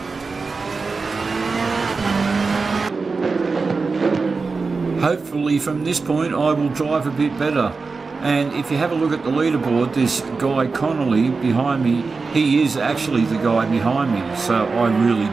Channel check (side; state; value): left; quieter; 4.3 dB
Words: Hopefully from this point I will drive a bit better. And if you have a look at the leaderboard, this guy Connolly behind me, he is actually the guy behind me, so I really